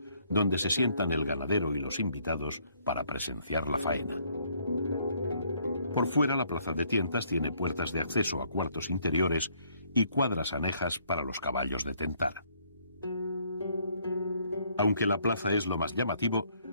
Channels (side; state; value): both; inverted; correlation -0.67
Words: donde se sientan el ganadero y los invitados para presenciar la faena. Por fuera, la plaza de tientas tiene puertas de acceso a cuartos interiores y cuadras anejas para los caballos de tentar. Aunque la plaza es lo más llamativo,